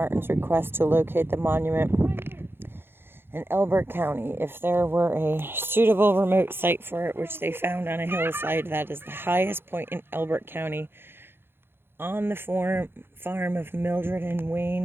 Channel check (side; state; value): left; late; 0.11 ms